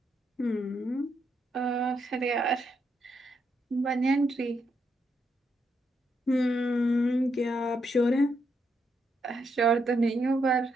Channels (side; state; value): both; normal; correlation 0.79